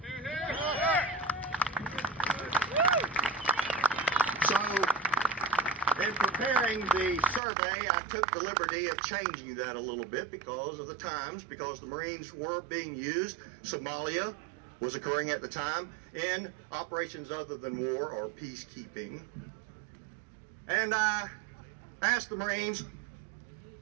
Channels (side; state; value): left; drops out; at 7.4 s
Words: So, in preparing the survey, I took the liberty of changing that a little bit because of the times, because the Marines were being used. Somalia was occurring at the time in operations other than war or peacekeeping. And I asked the Marines